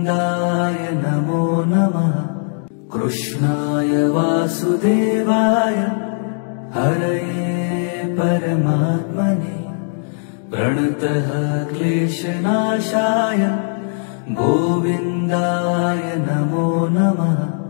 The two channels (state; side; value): silent; right; digital silence